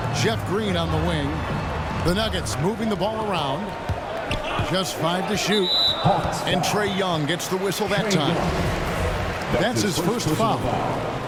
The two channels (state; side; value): identical; both; correlation 1.00